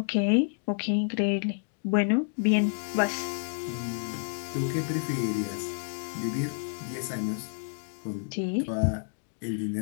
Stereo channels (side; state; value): right; silent; digital silence